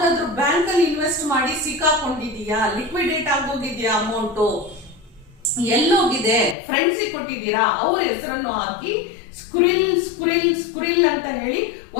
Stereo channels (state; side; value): drops out; right; at 6.6 s